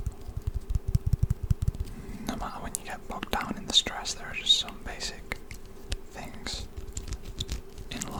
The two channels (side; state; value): both; identical; correlation 1.00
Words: No matter when you get bogged down in the stress, there are just some basic things in